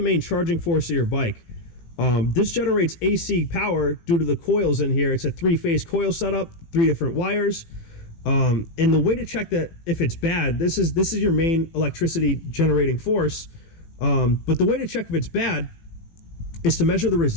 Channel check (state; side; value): late; right; 18 ms